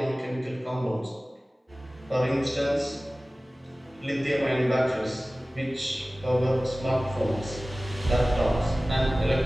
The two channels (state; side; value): normal; both; correlation 0.97